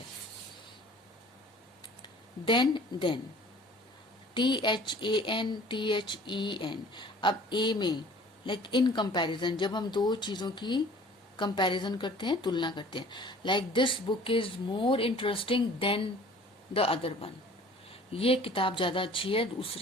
then THAN. अब A में लाइक इन कंपैरिजन, जब हम दो चीजों की कंपैरिजन करते हैं, तुलना करते हैं. Like this book is more interesting than the other one, ये किताब ज्यादा अच्छी है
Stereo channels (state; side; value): normal; both; correlation 0.49